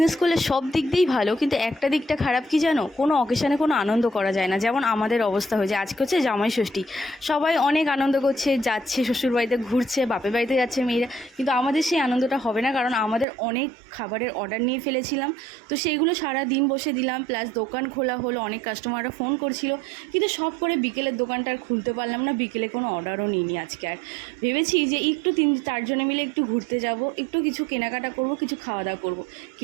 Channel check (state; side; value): drops out; left; at 13.2 s